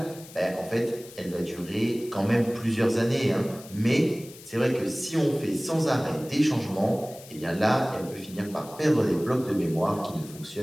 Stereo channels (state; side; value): noise; left; hiss, 19 dB below the sound